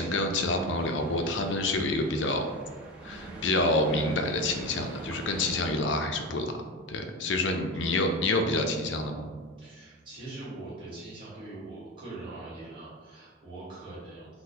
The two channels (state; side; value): normal; both; correlation 0.21